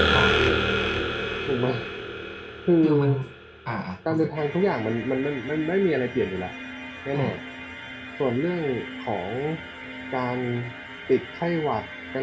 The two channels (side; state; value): both; identical; correlation 1.00